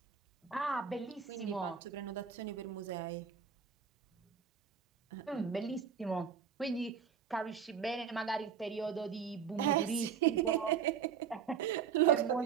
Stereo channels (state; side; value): quieter; left; 7.1 dB